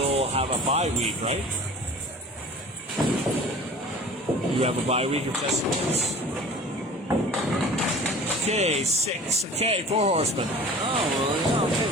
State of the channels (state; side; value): normal; both; correlation 0.42